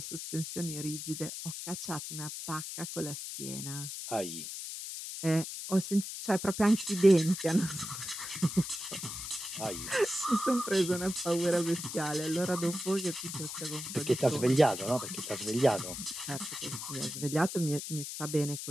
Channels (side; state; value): left; noise; hiss, 7 dB below the sound